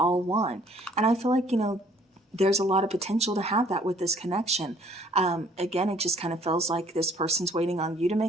want. And I feel like, there's a lot of potential to have that with this connection. Again, it just kind of feels like this person's waiting on you to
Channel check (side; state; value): both; normal; correlation 0.59